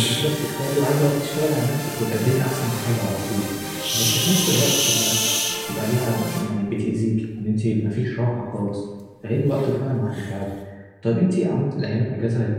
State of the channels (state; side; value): identical; both; correlation 1.00